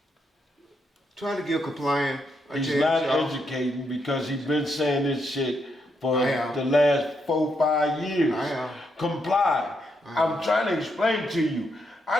try to give compliant a He's chance, not y'all. educating because he's been saying this shit for I am. the last 4-5 years. I am. Comply. I'm trying to explain to you. I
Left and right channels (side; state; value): both; normal; correlation 0.79